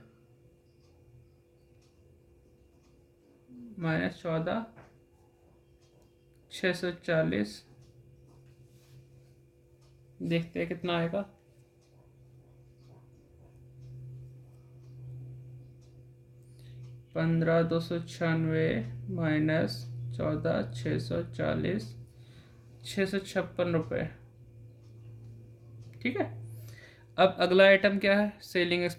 माइनस 14,640, देखते हैं कितना आएगा। 15,296 माइनस 14,640, 656 रुपये, ठीक है। अब अगला आइटम क्या है, सेलिंग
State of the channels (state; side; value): identical; both; correlation 1.00